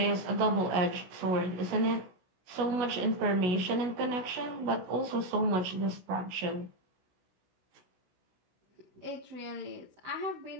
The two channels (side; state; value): left; late; 16 ms